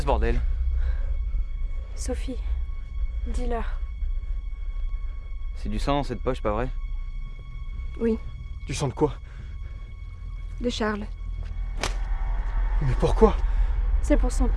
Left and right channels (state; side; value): identical; both; correlation 1.00